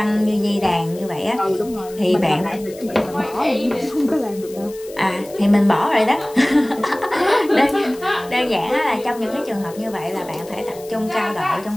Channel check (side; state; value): left; noise; hiss, 20 dB below the sound